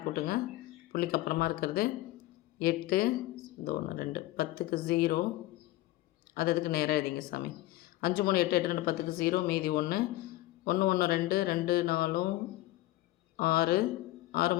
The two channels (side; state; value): right; quieter; 17.0 dB